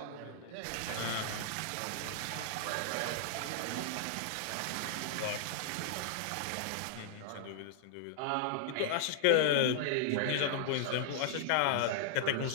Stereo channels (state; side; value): different; both; correlation -0.01